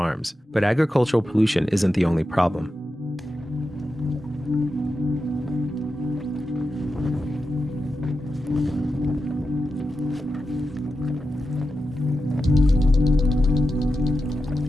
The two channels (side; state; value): both; normal; correlation 0.90